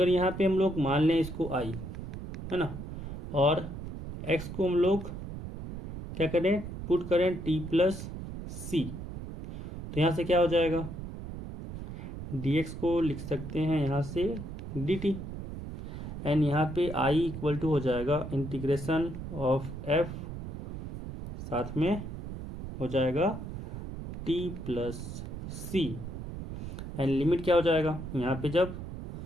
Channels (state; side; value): noise; right; rumble, 9 dB below the sound